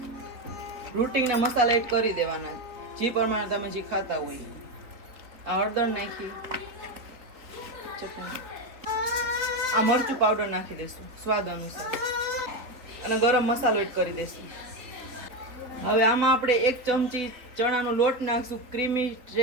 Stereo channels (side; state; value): left; late; 4.0 ms